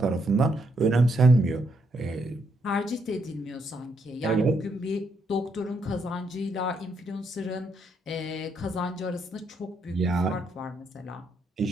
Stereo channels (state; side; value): normal; both; correlation 0.76